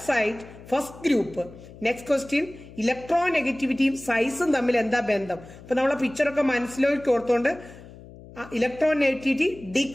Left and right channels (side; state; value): left; noise; hum, 18 dB below the sound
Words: side first group. Next question, ഇലക്ട്രോ നെഗറ്റിവിറ്റിയും സൈസും തമ്മിൽ എന്താ ബന്ധം? അപ്പൊ നമ്മളെ പിക്ചറൊക്കെ മനസ്സിലേക്ക് ഓർത്തുകൊണ്ട് electronegativity